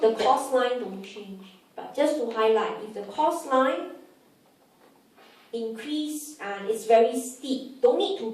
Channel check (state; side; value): identical; both; correlation 1.00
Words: cost line don't change. But just to highlight, if the cost line increase and it's very steep, don't need to